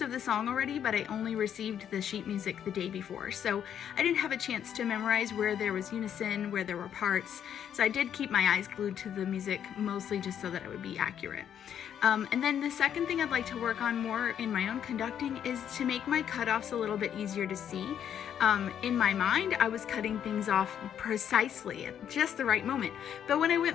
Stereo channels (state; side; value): quieter; right; 9.2 dB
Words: of the song already, but I only received the sheet music the day before, so I didn't have a chance to memorize where there was unison, where there were parts, so I did keep my eyes glued to the music, mostly just so that it would be accurate. And then the second thing I'd like to work on more in my own conducting is to make my cutoffs a little bit easier to see. In my mind, I was cutting things off precisely at just the right moment. But when I